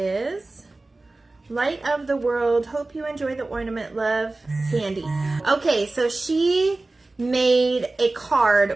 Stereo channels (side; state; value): left; quieter; 3.1 dB